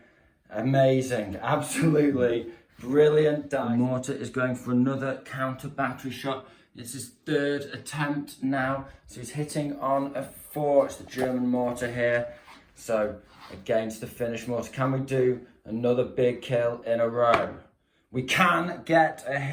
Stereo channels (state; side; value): identical; both; correlation 1.00